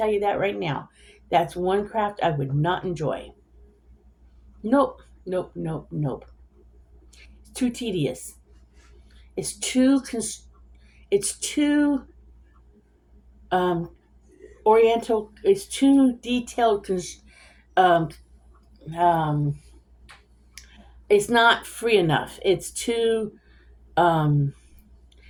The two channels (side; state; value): both; identical; correlation 1.00